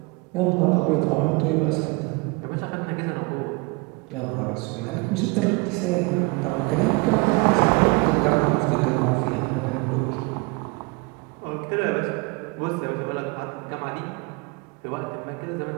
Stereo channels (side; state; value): left; quieter; 27.3 dB